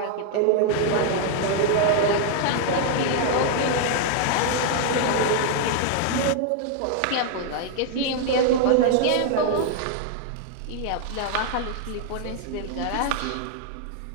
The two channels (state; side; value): different; both; correlation 0.00